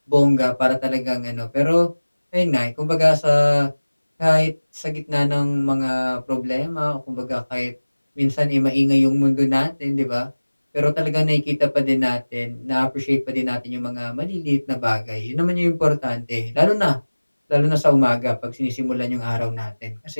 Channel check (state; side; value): inverted; both; correlation -1.00